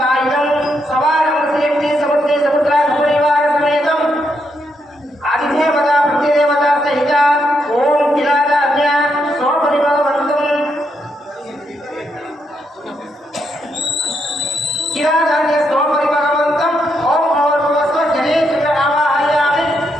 ಸವಾರಂ ಶ್ರೀಮತಿ ಸಮುದ್ರೇ ಸಮುದ್ರಾಧಿಪರಿವಾರ ಸಮೇತಂ ಆದಿದೇವತಾ ಪ್ರತಿದೇವತಾ ಸಹಿತ ಓಂ ಕಿಲಾದಾಜ್ಞ ಸ್ವಪರಿಭವಂತಂ ಕಿಲಾದಾಜ್ಞ ಸ್ವಪರಿಭವಂತಂ ಓಂ ಭವರ್ಭವಸ್ವ ಗಣೇಶನ ಆವಾಹಯಾಮಿ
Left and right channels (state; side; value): normal; both; correlation 0.79